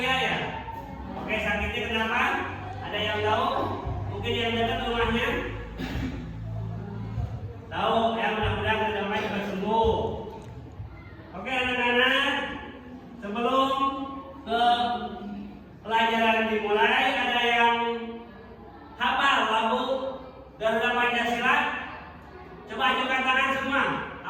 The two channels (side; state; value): both; identical; correlation 1.00